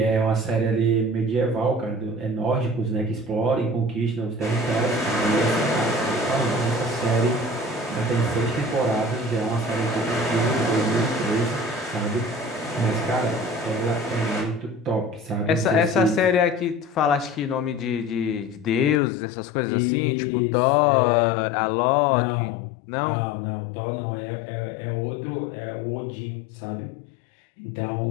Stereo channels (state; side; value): drops out; right; at 19.0 s